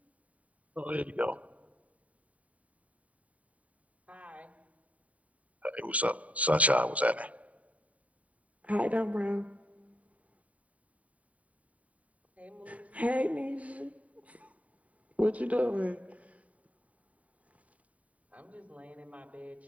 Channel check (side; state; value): left; late; 0.068 ms